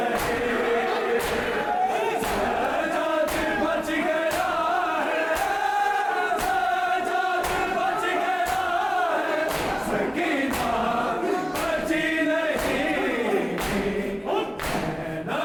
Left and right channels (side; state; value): both; identical; correlation 1.00